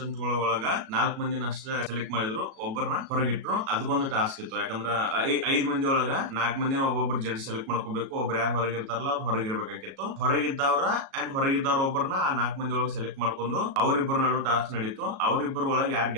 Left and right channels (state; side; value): late; left; 37 ms